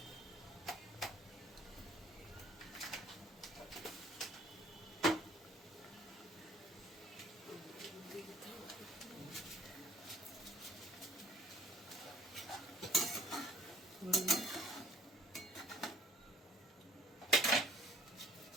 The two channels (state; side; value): normal; both; correlation 0.55